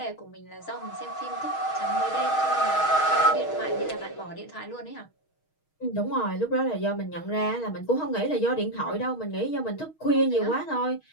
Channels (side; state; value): right; late; 6.4 ms